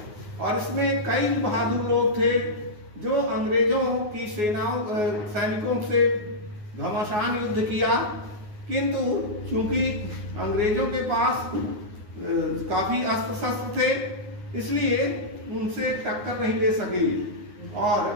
और इसमें कई बहादुर लोग थे जो अंग्रेजों की सैनिकों से घमासान युद्ध किया, किंतु चूंकि अंग्रेजों के पास काफी अस्त्र शस्त्र थे, इसलिए उनसे टक्कर नहीं ले सके और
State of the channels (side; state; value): left; late; 9.5 ms